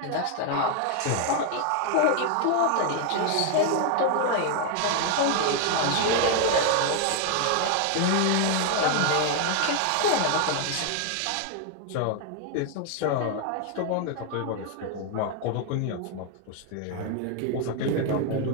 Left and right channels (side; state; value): both; different; correlation 0.00